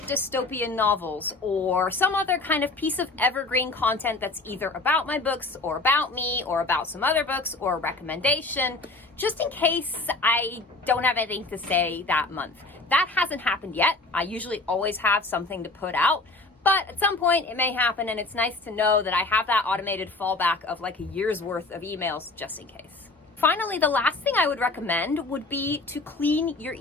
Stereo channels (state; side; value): quieter; right; 3.3 dB